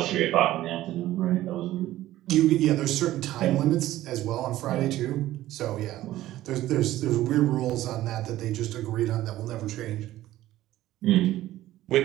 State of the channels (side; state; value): left; quieter; 14.9 dB